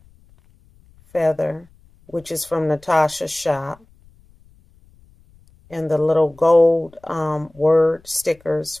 feather, which is from Natasha's shop, and the little gold word stickers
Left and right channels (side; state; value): left; noise; rumble, 29 dB below the sound